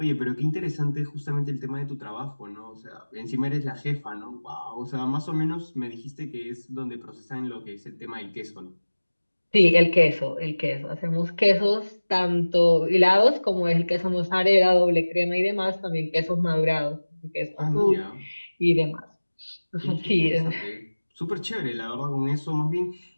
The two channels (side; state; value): both; inverted; correlation -1.00